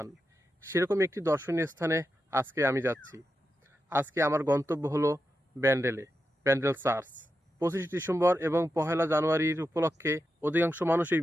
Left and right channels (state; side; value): normal; both; correlation 0.88